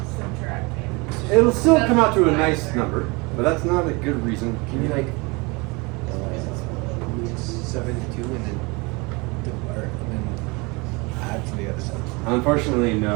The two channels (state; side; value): quieter; left; 26.9 dB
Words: subtracting. It'll still That's come out to a why. nice number, but that's not a good reason. Can you like 7 to 2 and then add to the other side? Unfortunately,